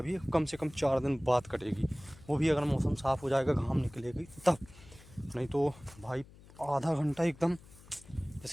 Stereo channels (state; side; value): noise; left; hum, 22 dB below the sound